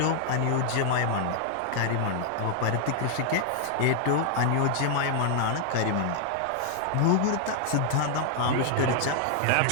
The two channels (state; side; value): different; both; correlation 0.00